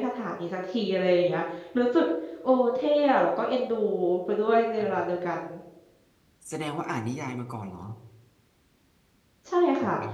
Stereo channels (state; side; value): identical; both; correlation 1.00